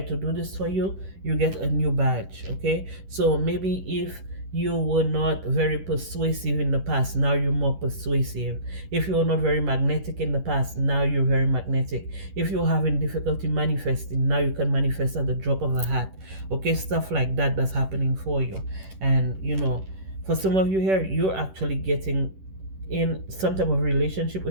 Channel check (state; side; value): late; left; 11 ms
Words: do this for you, you get a new badge. Okay, so maybe if you were not very persuasive in the past, now you're more persuasive. If you were not very magnetic in the past, now you're very magnetic. If you're having difficulty manifesting, now you can manifest at the drop of a hat. Okay, stuff like that that's happening for you. And for some of you here, you're actually getting in some type of relationship